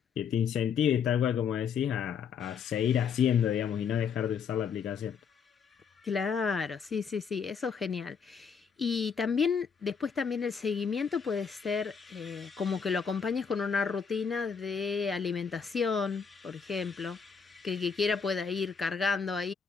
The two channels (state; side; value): quieter; right; 6.4 dB